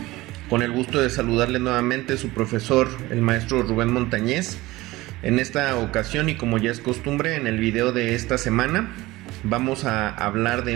con el gusto de saludarles nuevamente su profesor, el maestro Rubén Montañez. En esta ocasión, y como ya es costumbre, en el video de esta semana vamos a hablar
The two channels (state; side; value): quieter; left; 19.1 dB